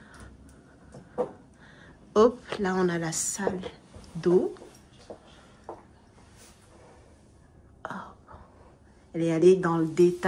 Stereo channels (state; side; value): identical; both; correlation 1.00